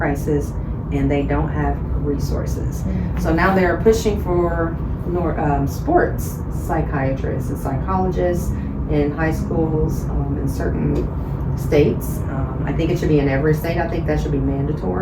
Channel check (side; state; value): both; identical; correlation 1.00